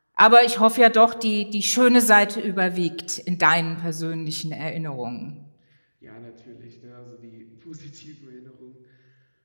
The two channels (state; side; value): inverted; both; correlation -1.00